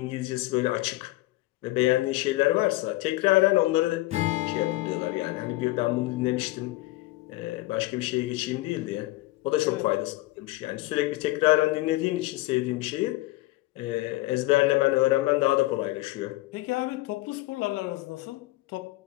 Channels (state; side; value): quieter; right; 19.0 dB